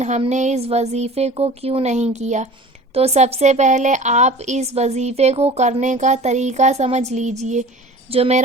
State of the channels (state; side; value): normal; both; correlation 0.41